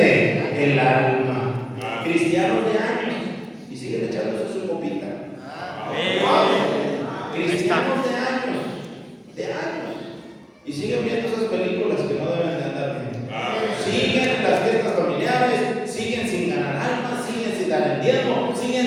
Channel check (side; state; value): both; identical; correlation 1.00